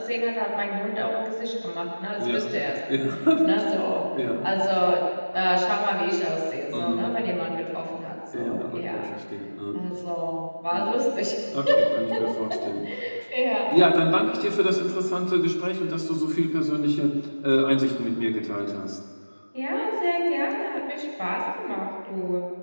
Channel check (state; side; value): inverted; both; correlation -1.00